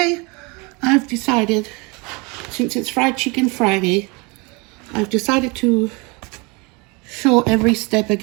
I've decided, since it's Fried Chicken Friday, I've decided to show every step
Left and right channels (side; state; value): left; quieter; 28.4 dB